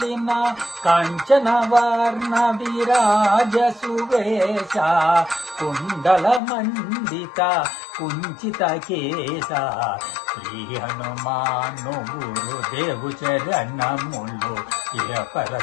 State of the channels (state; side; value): drops out; right; at 6.4 s